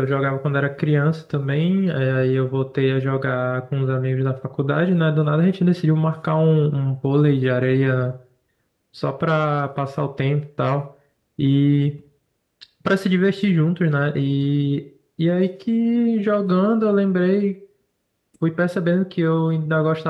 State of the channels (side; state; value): both; identical; correlation 1.00